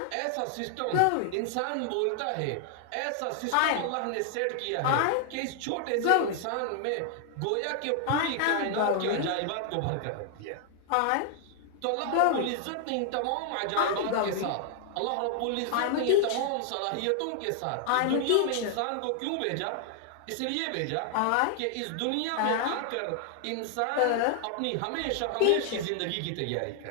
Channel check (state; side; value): different; both; correlation 0.00